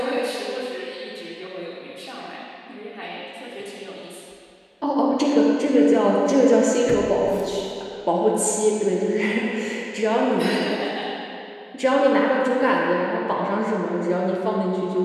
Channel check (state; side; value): identical; both; correlation 1.00